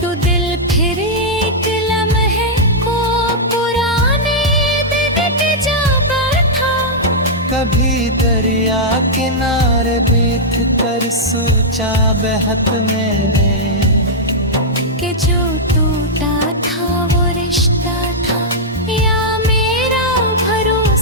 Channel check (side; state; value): both; normal; correlation -0.08